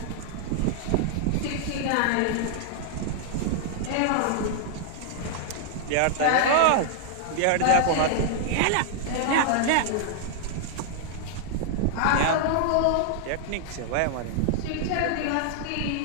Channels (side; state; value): both; different; correlation -0.01